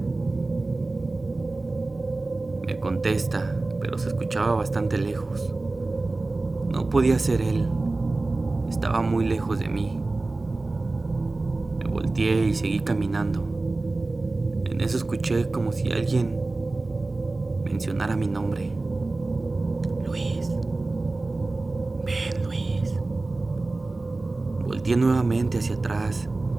Me contesta, pero se escuchaba bastante lejos. No podía ser él, estaba muy lejos de mí. Me volteé y seguí caminando. En eso escuché como si alguien mencionara mi nombre. Luis, ven Luis. Volteé nuevamente hacia atrás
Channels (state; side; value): quieter; left; 3.2 dB